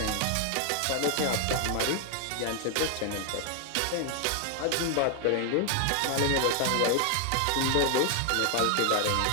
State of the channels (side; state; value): both; different; correlation 0.00